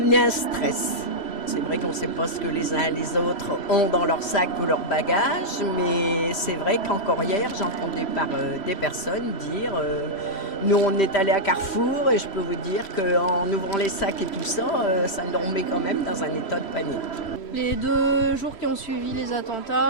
un stress. C'est vrai qu'on ne sait pas ce que les uns et les autres ont dans leur sac ou leur bagage, mais c'est vrai qu'encore hier, j'entendais par des personnes dire nous on est allé à Carrefour et je peux vous dire qu'en ouvrant les sacs et tout ça, ça nous remet quand même dans un état de panique. Les 2 jours qui ont suivi les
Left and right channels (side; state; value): right; late; 3.1 ms